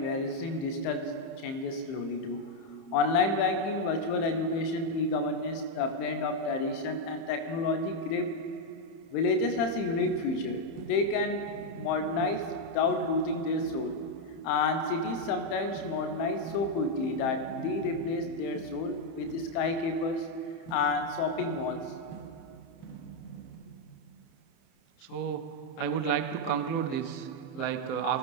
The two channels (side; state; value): right; late; 31 ms